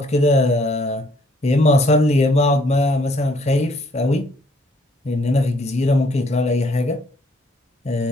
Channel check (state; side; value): normal; both; correlation 0.64